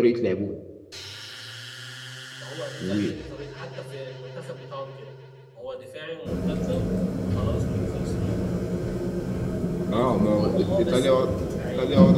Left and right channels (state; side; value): identical; both; correlation 1.00